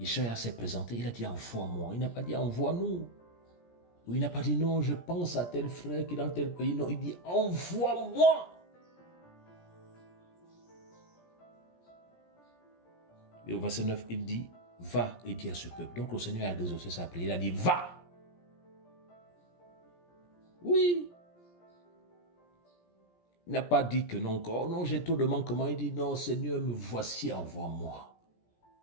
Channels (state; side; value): late; right; 17 ms